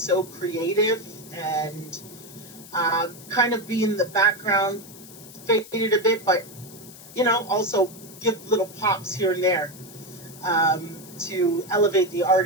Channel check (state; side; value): noise; left; hiss, 18 dB below the sound